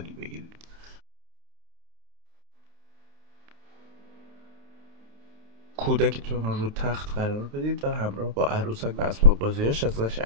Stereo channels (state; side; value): late; left; 28 ms